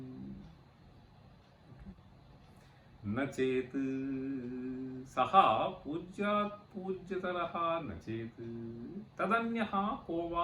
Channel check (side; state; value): both; identical; correlation 1.00